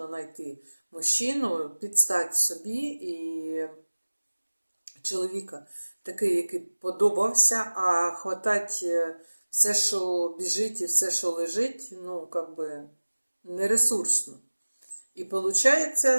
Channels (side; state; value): both; inverted; correlation -1.00